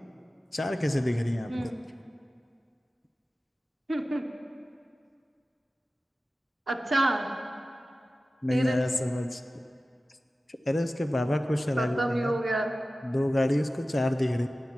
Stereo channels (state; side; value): normal; both; correlation 0.96